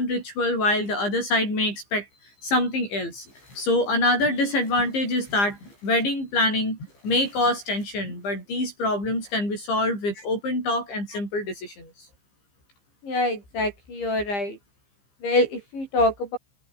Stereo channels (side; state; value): right; late; 15 ms